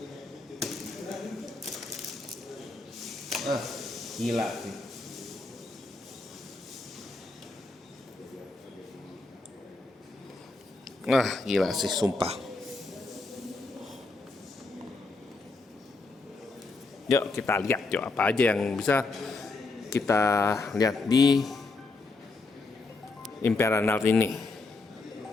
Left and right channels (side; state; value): right; quieter; 3.5 dB